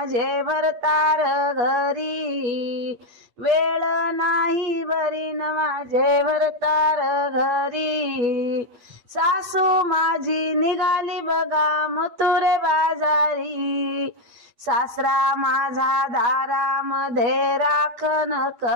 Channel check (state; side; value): late; left; 8.5 ms